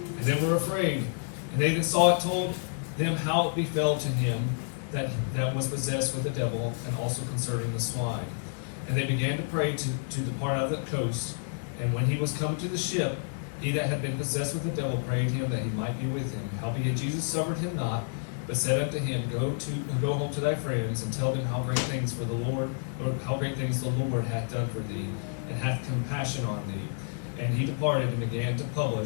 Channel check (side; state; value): right; silent; digital silence